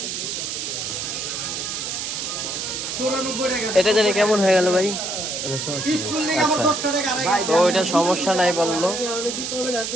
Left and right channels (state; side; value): noise; right; hiss, 4 dB below the sound